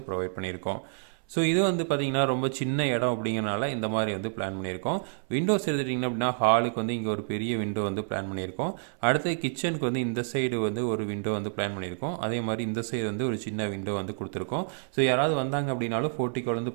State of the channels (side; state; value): left; silent; 59 dB below the other